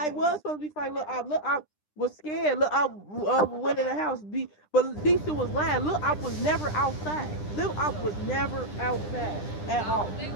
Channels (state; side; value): late; right; 9.9 ms